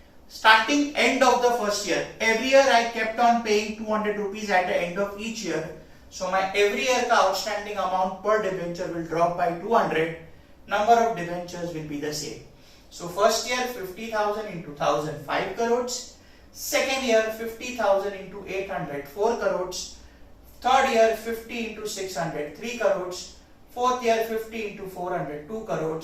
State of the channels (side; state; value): both; identical; correlation 1.00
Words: starting end of the first year, every year I kept on paying 200 rupees at the end of each year. So my every year ka outstanding amount per debenture will drop by 200. Number of debentures will be the same. So first year 50,000 into 1,000, 5 crores. Second year 50,000 into 800, 4 crores. Third year 50 into 600, 3 crores. Fourth year 50 into 400, 2